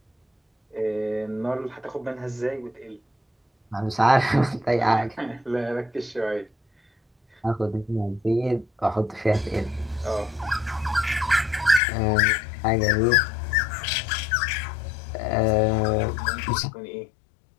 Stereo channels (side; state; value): right; drops out; at 11.8 s